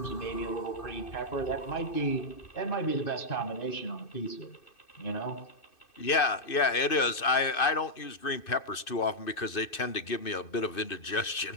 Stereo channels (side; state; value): right; late; 2.6 ms